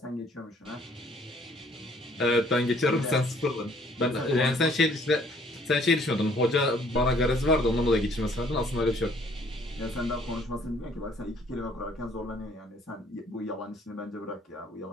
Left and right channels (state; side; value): normal; both; correlation 0.60